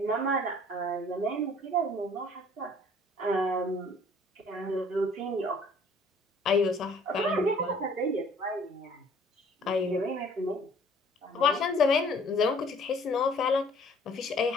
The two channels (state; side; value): normal; both; correlation 0.55